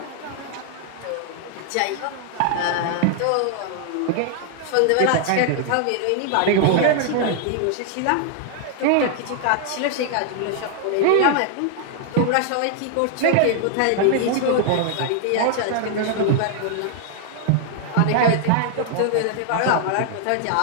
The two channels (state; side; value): different; both; correlation 0.00